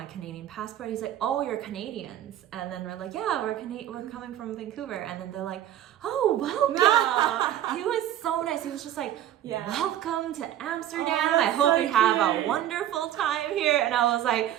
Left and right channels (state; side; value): quieter; left; 11.8 dB